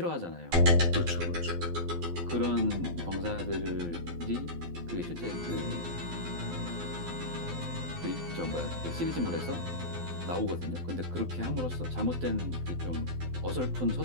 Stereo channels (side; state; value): left; late; 12 ms